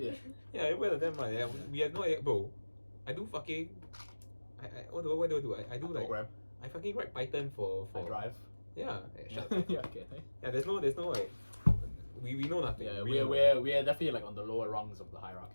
Yeah, you wear the damn mask. Yeah, we have no idea, bro. I do fucking. What do I do? I do like. Program. I fucking write Python for. I drive. Yeah. Shut up. Yeah. Okay. Yeah, there's no like. We know nothing. Yeah, we we're definitely like on the lower rungs of the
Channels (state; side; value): inverted; both; correlation -1.00